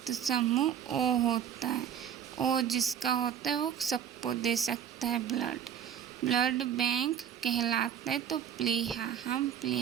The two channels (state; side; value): quieter; left; 9.1 dB